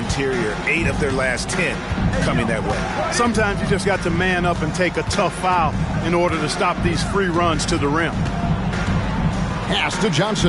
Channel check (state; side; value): identical; both; correlation 1.00